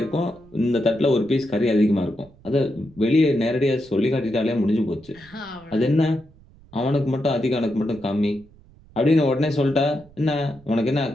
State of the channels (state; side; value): noise; right; rumble, 26 dB below the sound